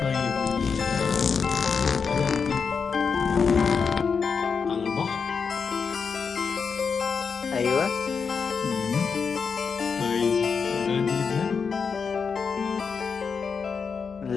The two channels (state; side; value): quieter; right; 5.7 dB